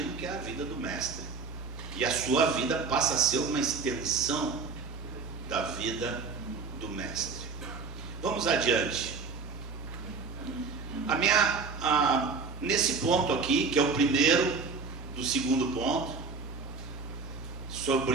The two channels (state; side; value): quieter; left; 4.7 dB